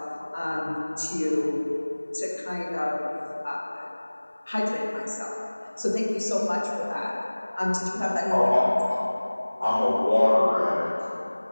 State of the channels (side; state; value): both; inverted; correlation -1.00